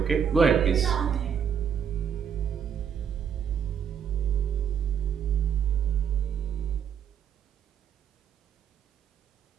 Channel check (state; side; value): quieter; left; 7.8 dB